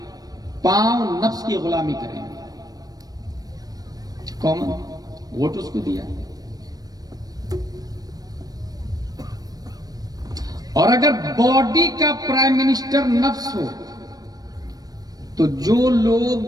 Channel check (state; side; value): late; left; 0.18 ms